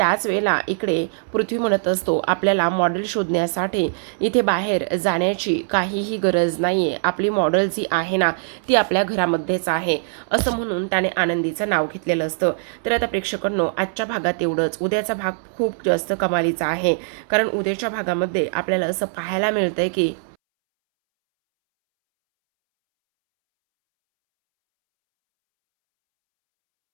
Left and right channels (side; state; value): left; silent; 65 dB below the other